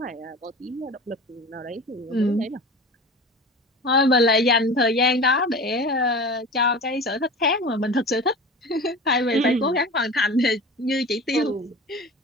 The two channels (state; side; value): normal; both; correlation 0.34